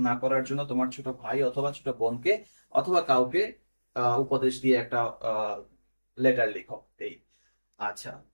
না করার জন্য তোমার ছোট ভাই অথবা ছোট বোনকে অথবা কাউকে উপদেশ দিয়ে একটা লেটার লিখো, এই। আচ্ছা,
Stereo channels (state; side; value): inverted; both; correlation -1.00